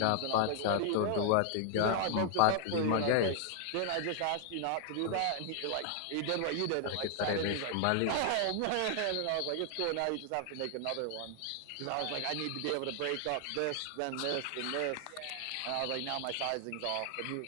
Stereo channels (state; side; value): different; both; correlation 0.00